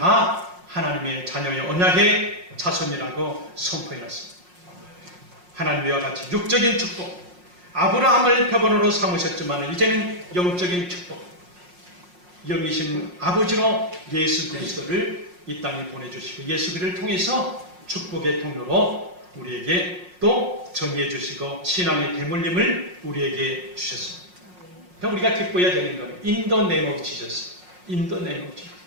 하나님의 자녀의 언약의 자손이라고 선포해놨습니다. 하나님과 같이 육적인 축복, 아브라함을 표본으로 삼으셨지만 이제는 영적인 축복, 영이신 아버지로 예수 그리스도를 이 땅에 보내주시고 예수 그리스도를 통해서 축복의 통로로 우리에게 또 전해 주시고 신앙의 대물림을 우리에게 주셨습니다. 그러니까 우리가 기뻐해야 되는 거예요. In the name of Jesus. In the name of Jesus.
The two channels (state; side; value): late; left; 5.5 ms